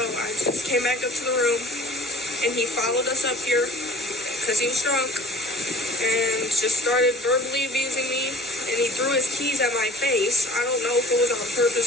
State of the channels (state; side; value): normal; both; correlation 0.49